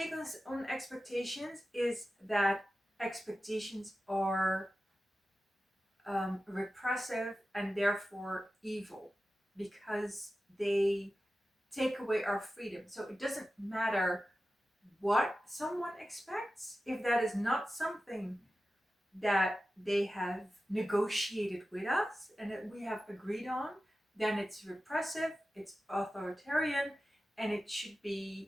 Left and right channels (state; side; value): normal; both; correlation 0.94